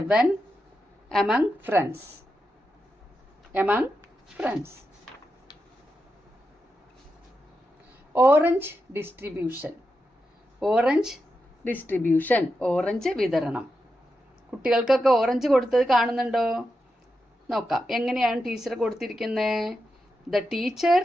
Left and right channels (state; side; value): normal; both; correlation 0.88